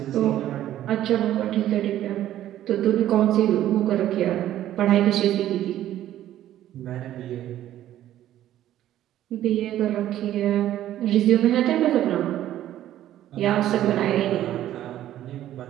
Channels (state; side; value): quieter; left; 12.6 dB